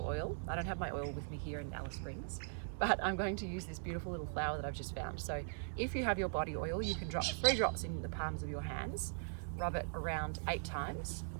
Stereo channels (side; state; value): left; silent; digital silence